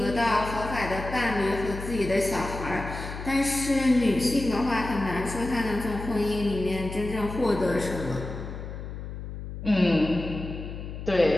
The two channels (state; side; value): noise; left; hum, 9 dB below the sound